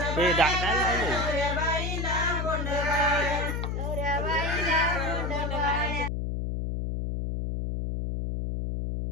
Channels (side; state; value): left; noise; hum, 2 dB below the sound